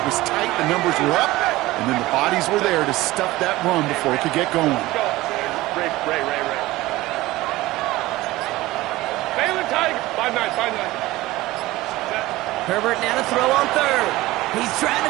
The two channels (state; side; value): quieter; left; 18.3 dB